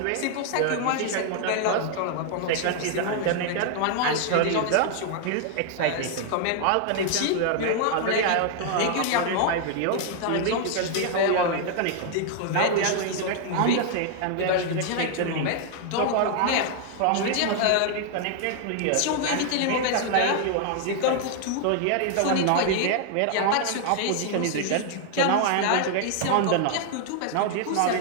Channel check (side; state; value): both; different; correlation 0.00